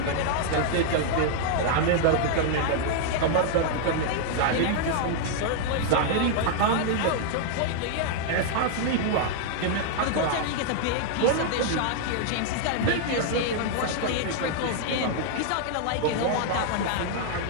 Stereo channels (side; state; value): both; different; correlation -0.01